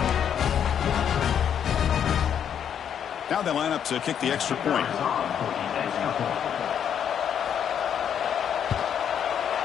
Now they line up to kick the extra point.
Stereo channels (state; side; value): quieter; right; 8.7 dB